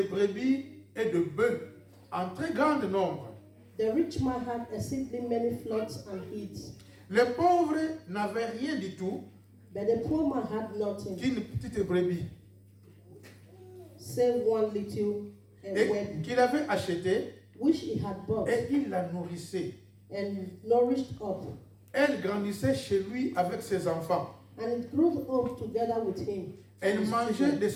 brebis et de bœufs en très grand nombre. The rich man had exceedingly many flocks and herds, Les pauvres n'avaient rien du tout but the poor man had nothing, qu'une petite brebis save one little et web, qu'il avait acheté which he had bought et il la nourrissait. and nourished up. Elle grandissait chez lui avec ses enfants. And it grew up together with him. Elle mangeait de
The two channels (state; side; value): identical; both; correlation 1.00